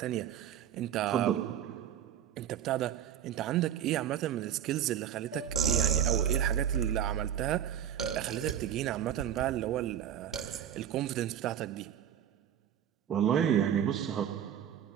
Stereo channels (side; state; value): left; quieter; 9.7 dB